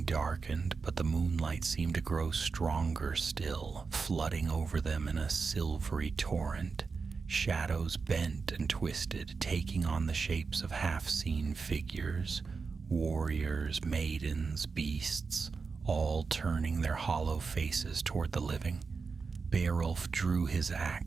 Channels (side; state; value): left; quieter; 4.9 dB